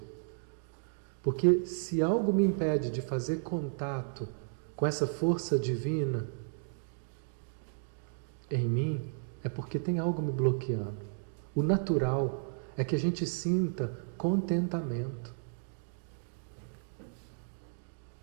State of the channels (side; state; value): left; silent; digital silence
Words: Porque se algo me impede de fazer contato com essa força divina em mim, é porque tem algo me bloqueando. O natural é que a gente sinta contentamento.